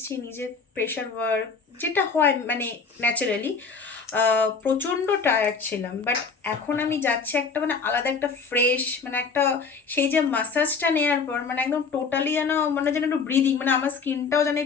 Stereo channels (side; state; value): right; quieter; 5.1 dB